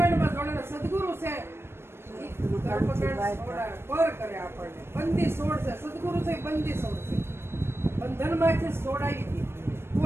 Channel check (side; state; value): left; late; 0.12 ms